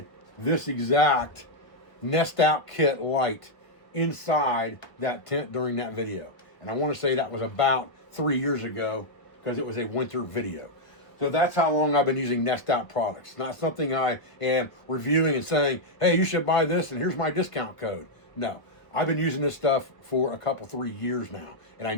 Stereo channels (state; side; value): late; right; 1.1 ms